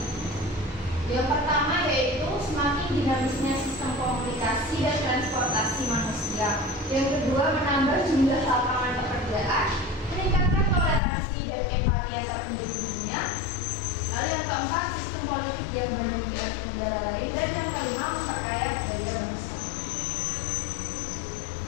Yang pertama yaitu semakin dinamisnya sistem komunikasi dan transportasi manusia. Yang kedua menambah jumlah lapangan pekerjaan, meningkatkan toleransi dan empati antar penduduk dunia. Lalu yang keempat sistem politik yang banyak dianut negara lain, dan yang kelima memperkaya budaya bangsa.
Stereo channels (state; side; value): drops out; right; at 11.0 s